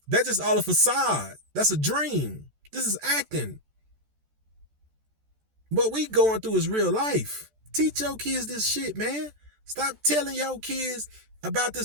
That's just all a facade. That's a dream. This is acting. What we going through is real life. Teach your kids this shit, man. Stop telling your kids about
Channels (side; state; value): left; late; 14 ms